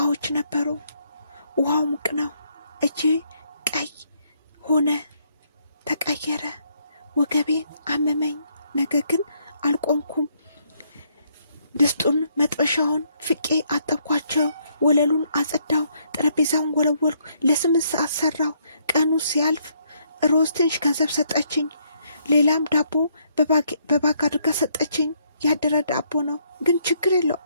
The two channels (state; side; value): inverted; both; correlation -0.71